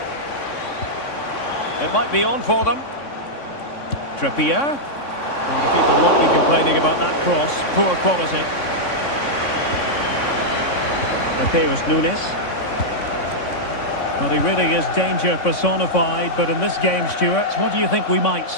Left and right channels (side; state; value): right; late; 3.6 ms